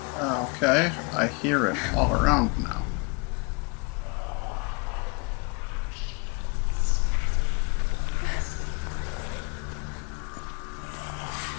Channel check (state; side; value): quieter; right; 30.9 dB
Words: Okay, I hear it all around now.